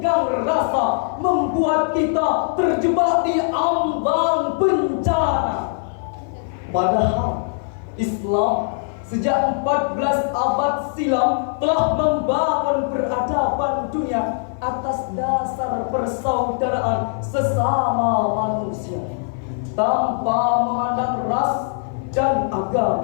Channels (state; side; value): silent; right; 55 dB below the other